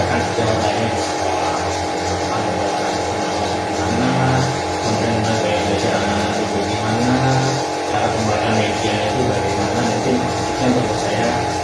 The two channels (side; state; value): both; identical; correlation 1.00